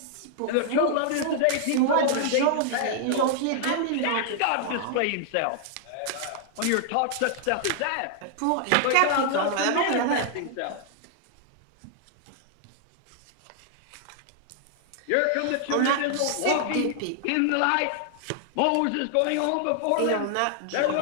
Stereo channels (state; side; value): different; both; correlation 0.00